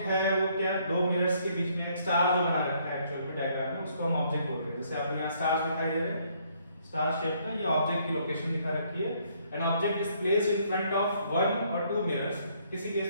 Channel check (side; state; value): both; inverted; correlation -0.67